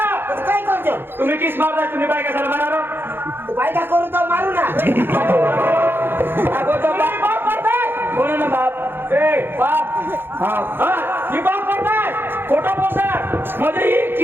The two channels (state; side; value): late; left; 0.10 ms